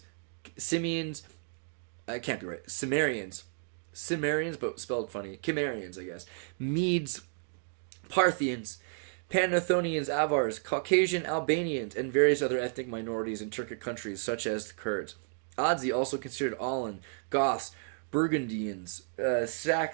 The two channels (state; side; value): silent; left; digital silence